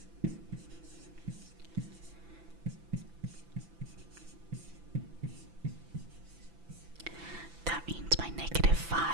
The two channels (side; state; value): left; late; 5.9 ms